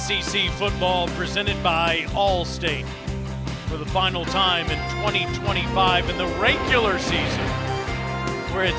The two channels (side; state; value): both; identical; correlation 1.00